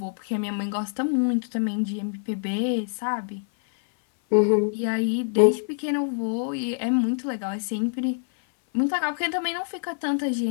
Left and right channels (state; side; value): silent; right; 59 dB below the other